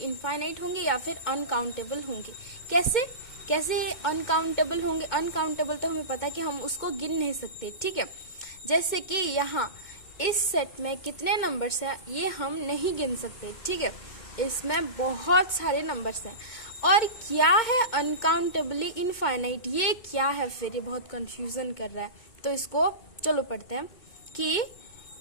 होंगे या फिर अनकाउंटेबल होंगे. कैसे अनकाउंटेबल होंगे? अनकाउंटेबल तो हमें पता है कि हम उसको गिन नहीं सकते. ठीक है, जैसे कि यहाँ इस सेट में कितने नंबर्स हैं ये हम नहीं गिन सकते. ठीक है, इसमें बहुत सारे नंबर्स हैं. और क्या है अनकाउंटेबली इनफाइनाइट, ये क्या है फिर? ये बहुत कंफ्यूजन कर रहा है. तो इसको चलो पढ़ते हैं कि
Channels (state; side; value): late; right; 2.2 ms